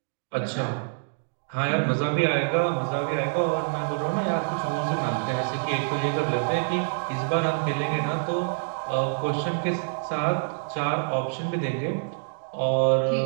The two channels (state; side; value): silent; left; digital silence